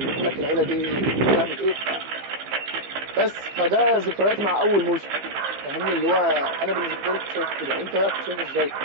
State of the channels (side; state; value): left; late; 15 ms